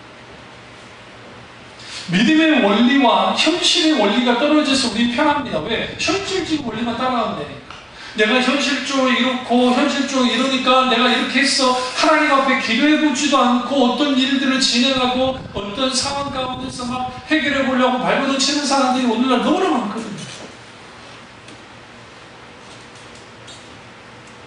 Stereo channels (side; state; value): both; identical; correlation 1.00